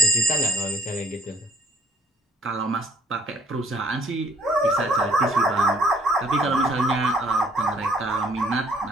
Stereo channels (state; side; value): normal; both; correlation 0.60